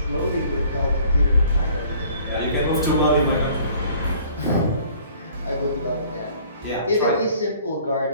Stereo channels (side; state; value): both; inverted; correlation -0.55